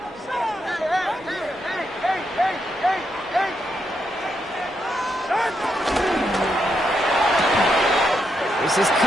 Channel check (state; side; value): normal; both; correlation 0.81